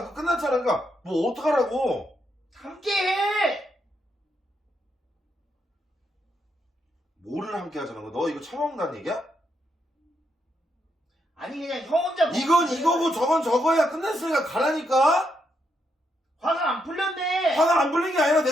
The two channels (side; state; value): both; normal; correlation 0.79